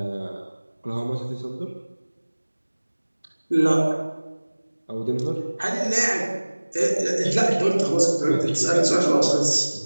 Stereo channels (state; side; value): inverted; both; correlation -1.00